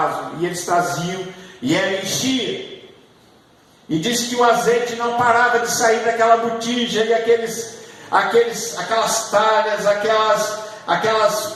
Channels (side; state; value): both; identical; correlation 1.00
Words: E eles traziam, e ela enchia. E diz que o azeite não parava de sair daquela botija, e aquelas talhas,